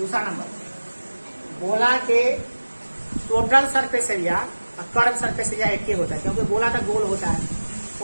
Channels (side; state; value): both; inverted; correlation -1.00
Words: नंबर, गोला के टोटल सरफेस एरिया और कर्व सरफेस एरिया एक ही होता है, क्योंकि गोला तो गोल होता है,